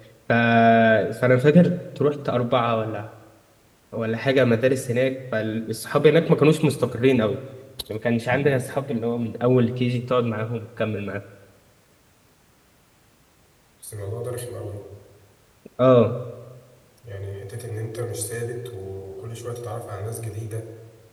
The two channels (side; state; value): both; identical; correlation 1.00